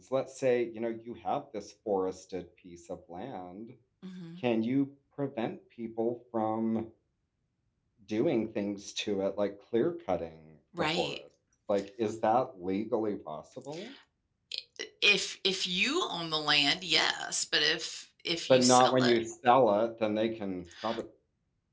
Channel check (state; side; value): identical; both; correlation 1.00